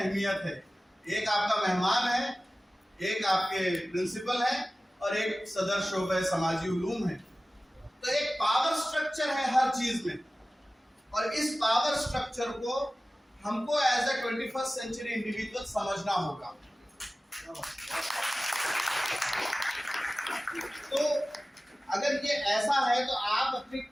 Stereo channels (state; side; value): normal; both; correlation 0.97